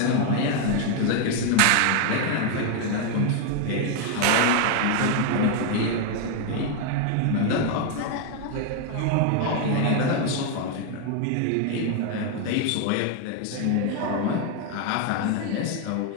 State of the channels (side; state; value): both; different; correlation 0.01